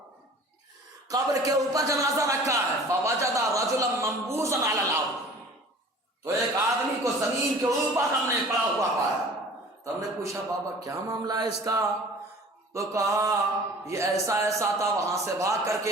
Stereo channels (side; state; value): both; normal; correlation 0.46